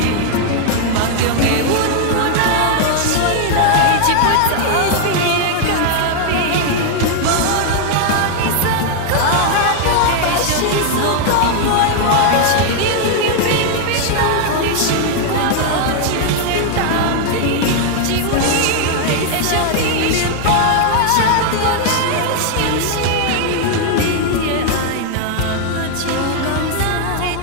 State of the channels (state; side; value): different; both; correlation 0.00